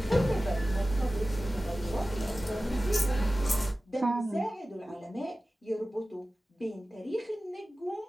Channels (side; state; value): both; normal; correlation 0.96